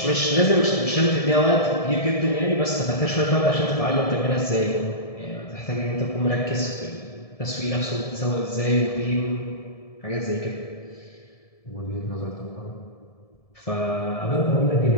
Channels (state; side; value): late; right; 1.7 ms